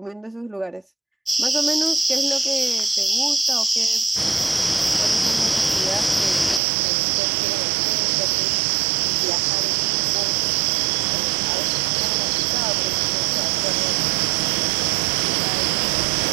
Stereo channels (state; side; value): drops out; left; at 6.6 s